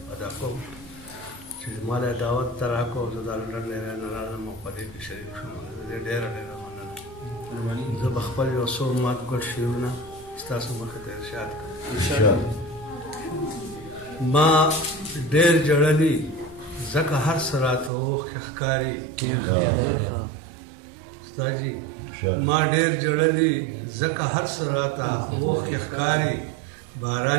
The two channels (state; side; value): drops out; left; at 17.9 s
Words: ادا کوم چې ما له دعوت ته راکړو زه د لندن نه راغلم او په دې کې شریک شوم. ډېره مننه. زه به خپل یو څو ماتګړ شعرونه ستاسو مخې ته ارشاد کړم. ما ډېر جړلي ځکه هر څه راته اوښکې ښکاري. استادجي ما ډېر جړلي ځکه هر څه راته اوښکې ښکاري.